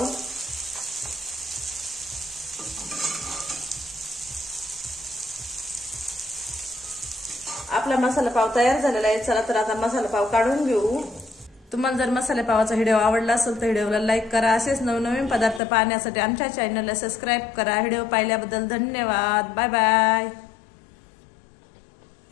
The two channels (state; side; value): drops out; right; at 15.6 s